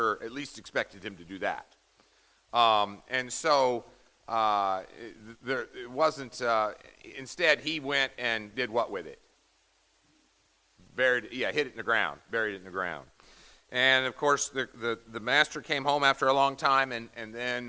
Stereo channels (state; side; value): identical; both; correlation 1.00